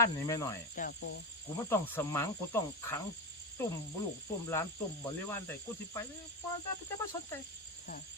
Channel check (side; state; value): both; normal; correlation 0.16